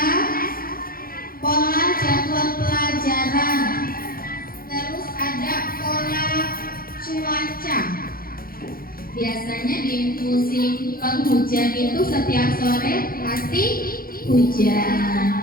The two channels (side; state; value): right; late; 0.42 ms